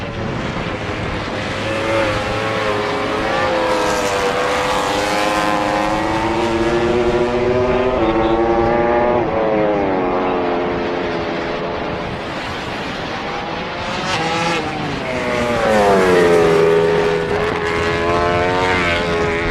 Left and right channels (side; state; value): both; identical; correlation 1.00